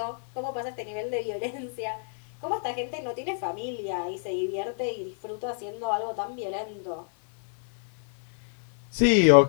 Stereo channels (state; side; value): silent; right; digital silence